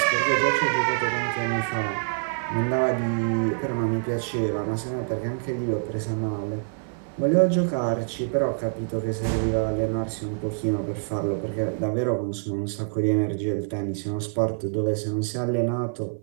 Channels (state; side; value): silent; left; 55 dB below the other